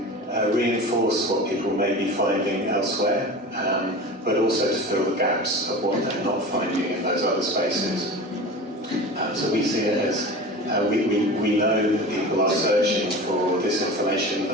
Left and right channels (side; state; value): both; normal; correlation 0.33